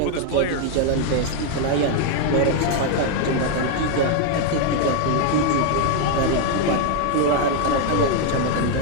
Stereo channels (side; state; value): both; different; correlation 0.00